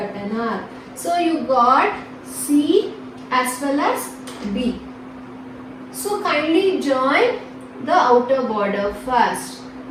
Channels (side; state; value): both; identical; correlation 1.00